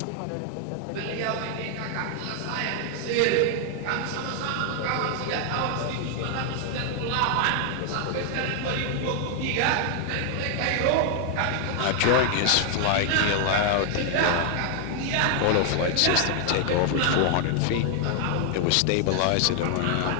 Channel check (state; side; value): different; both; correlation 0.00